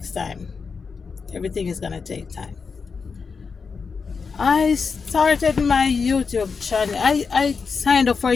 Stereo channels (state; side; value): quieter; right; 5.2 dB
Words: time. Everything is gonna take time. I started my YouTube channel. I signed up for a